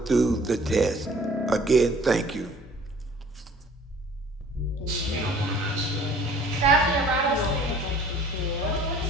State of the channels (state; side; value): normal; both; correlation 0.51